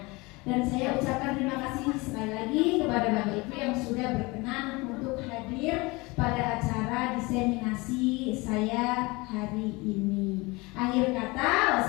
Dan saya ucapkan terima kasih sekali lagi kepada Bapak Ibu yang sudah berkenan untuk hadir pada acara diseminasi saya hari ini. Akhir kata,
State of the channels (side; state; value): right; quieter; 24.4 dB